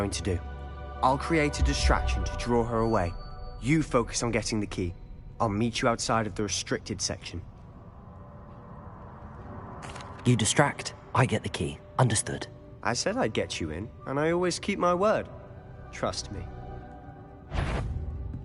to do. I'll create a distraction to draw her away. You focus on getting the key. I'll meet you outside of the restricted section. You distract, I get the key. Understood. I said I'd get you in, and I always keep my word. Trust me.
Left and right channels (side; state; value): both; identical; correlation 1.00